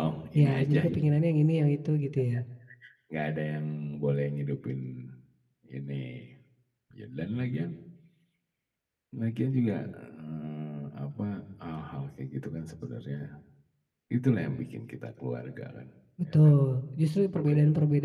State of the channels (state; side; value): identical; both; correlation 1.00